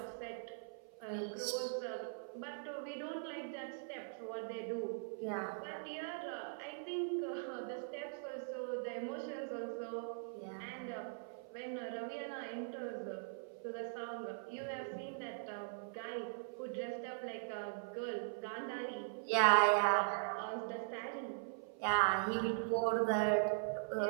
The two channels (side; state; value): left; silent; 50 dB below the other